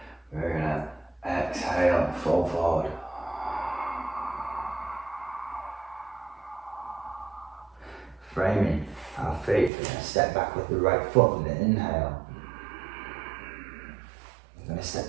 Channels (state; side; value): drops out; left; at 9.7 s